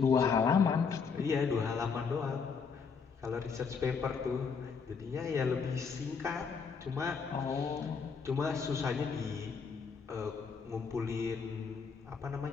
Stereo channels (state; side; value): quieter; right; 5.7 dB